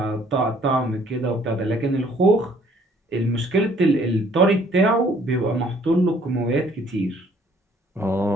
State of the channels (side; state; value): both; normal; correlation 0.60